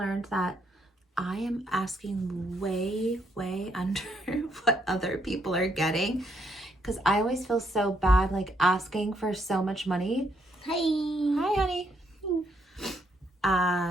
that I am asking way, way under what other people are getting because I always feel so bad like asking for so much money. Hi. Hi, honey.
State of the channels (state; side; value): normal; both; correlation 0.73